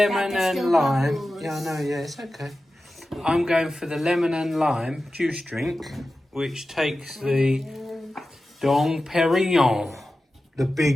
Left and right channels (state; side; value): normal; both; correlation 0.94